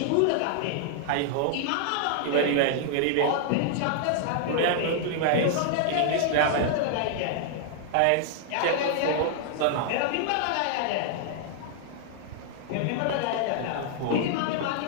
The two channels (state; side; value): different; both; correlation -0.01